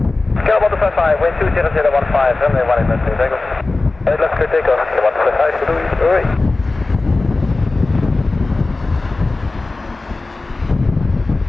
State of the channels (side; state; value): right; quieter; 3.3 dB